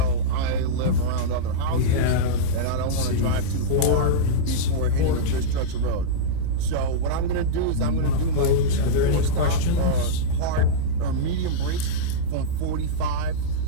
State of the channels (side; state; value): both; different; correlation -0.05